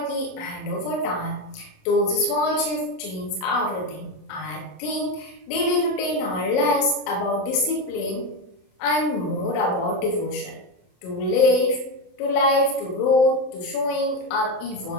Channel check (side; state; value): right; late; 27 ms